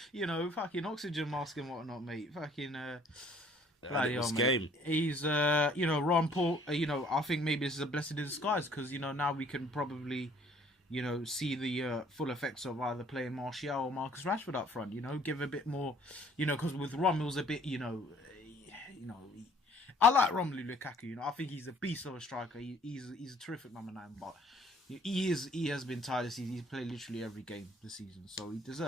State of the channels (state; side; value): normal; both; correlation 0.58